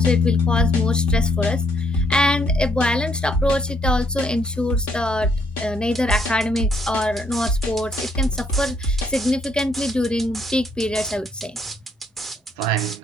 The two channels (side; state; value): both; normal; correlation 0.70